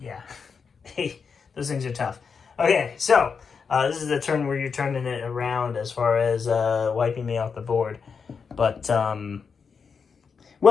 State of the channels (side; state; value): right; quieter; 5.8 dB